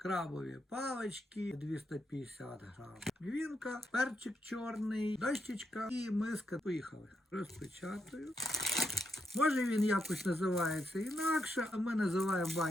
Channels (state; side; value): normal; both; correlation 0.82